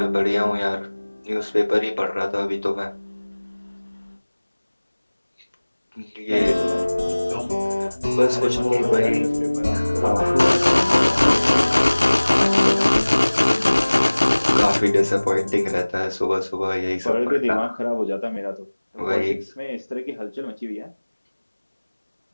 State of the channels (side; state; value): both; inverted; correlation -1.00